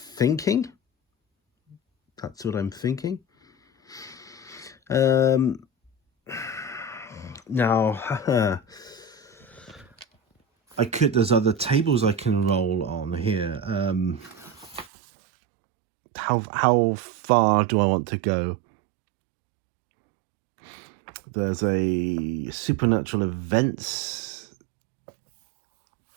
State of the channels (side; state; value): left; drops out; at 14.9 s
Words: That's what I'm thinking. Now, there's other tables I can roll on here. How far do I want to go? There's a supernatural events